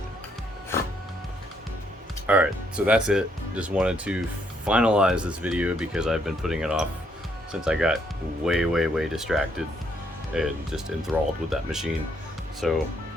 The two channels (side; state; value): both; normal; correlation 0.71